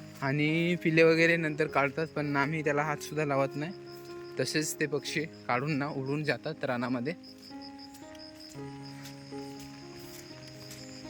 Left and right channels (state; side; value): identical; both; correlation 1.00